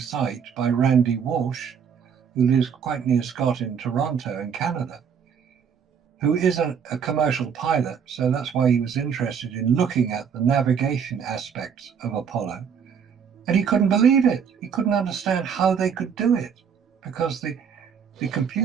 by Randy Walsh, who lives quite near Scott in Toronto in Canada, who is a commercial pilot. So that's why he was interested in looking at the navigation aspects of Apollo. And he couldn't believe it. He couldn't understand how they could do it, because the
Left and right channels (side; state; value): left; quieter; 7.1 dB